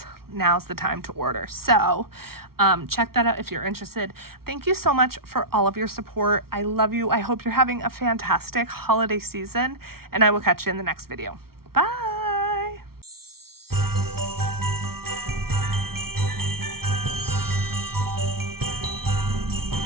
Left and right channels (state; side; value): late; left; 0.94 ms